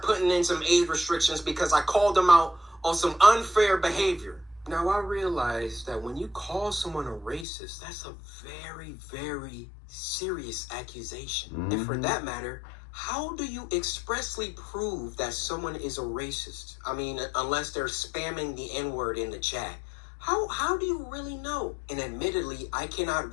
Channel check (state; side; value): drops out; right; at 7.5 s